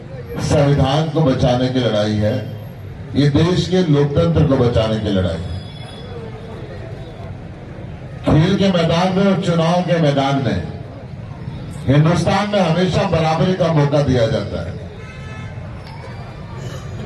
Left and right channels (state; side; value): identical; both; correlation 1.00